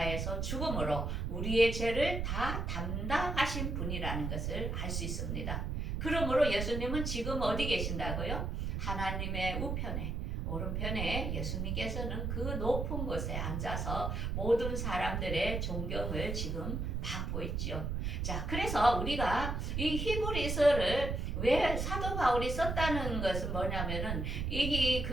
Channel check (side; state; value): right; noise; rumble, 2 dB below the sound